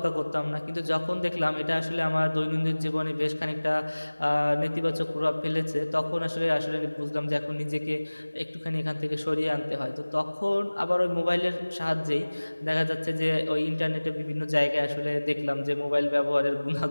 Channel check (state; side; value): inverted; both; correlation -1.00